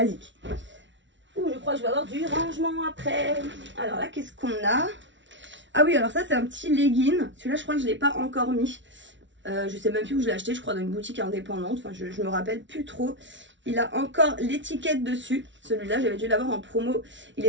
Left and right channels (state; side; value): late; left; 0.55 ms